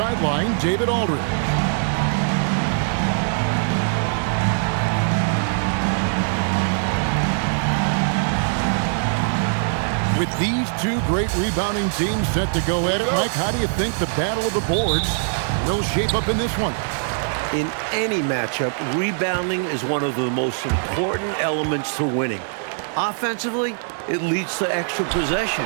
David Aldridge. With these two great rebounding teams set to go at it, Mike, how do you think the battle of the boards will shape up in this one? In any matchup, rebounding is one of the most important elements to winning. Offensively, it leads to extra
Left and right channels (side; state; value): left; silent; digital silence